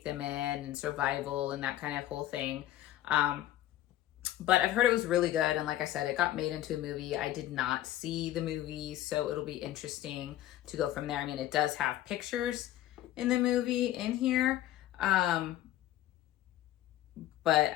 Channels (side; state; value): right; quieter; 13.6 dB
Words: them in, and survival and that kind of whole thing. But I've heard it was really good. And like I said, it got made into a movie. I did not see the movie, so it'll be interesting to go from there. I mean, it does have pictures in the movie in here. But